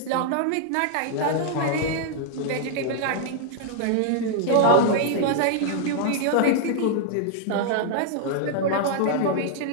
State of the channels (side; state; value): both; different; correlation -0.01